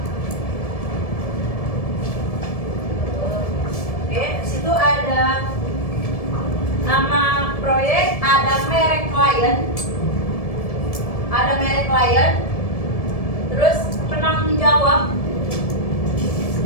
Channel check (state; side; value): late; right; 1.7 ms